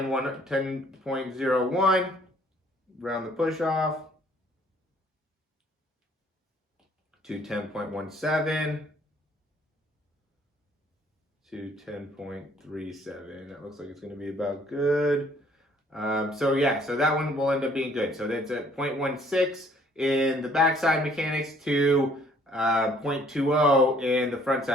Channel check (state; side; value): normal; both; correlation 0.60